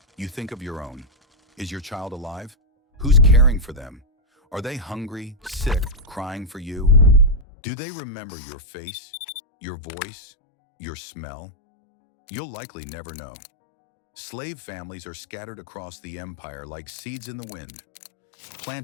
you think of your own. Is your child alive? Who's caring for them? Are they hungry, sick, crying for you? Do they remember your face, your voice, your smell? You'll likely never know. Slave families are scattered across the empire like seeds in the wind,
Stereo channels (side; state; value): right; drops out; at 7.5 s